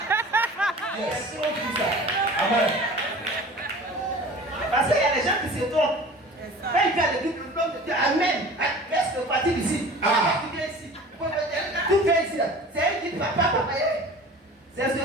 Yes. Tout ça. Amen. Parce qu'il y a des gens qui se trompent. Quand il vient à l'église, l'homme de Dieu, Amen. Reste parti d'ici. Tu viens ici. Tu viens ici. C'est elle qui dit, papa. C'est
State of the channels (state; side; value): normal; both; correlation 0.41